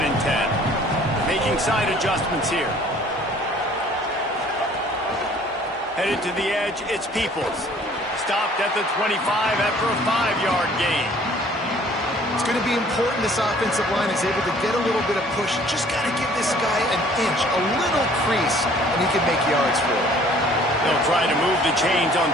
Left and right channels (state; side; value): normal; both; correlation 0.55